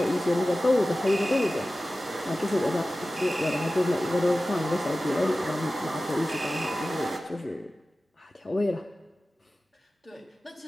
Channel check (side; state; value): both; normal; correlation 0.95